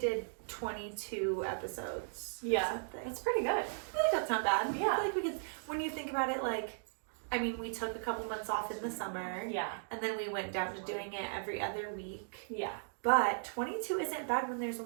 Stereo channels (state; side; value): silent; left; digital silence